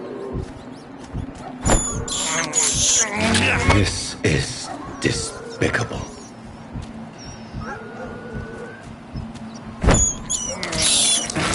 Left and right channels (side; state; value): both; identical; correlation 1.00